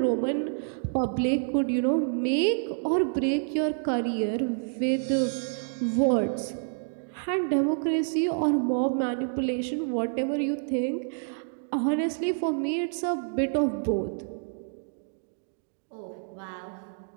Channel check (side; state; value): left; silent; digital silence